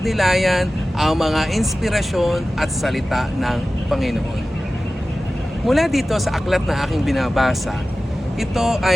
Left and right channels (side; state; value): both; normal; correlation 0.96